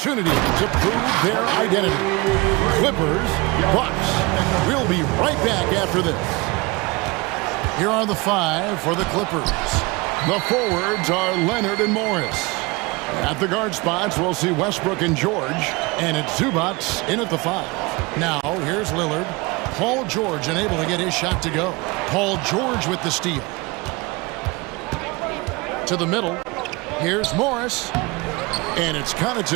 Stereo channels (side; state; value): left; quieter; 25.0 dB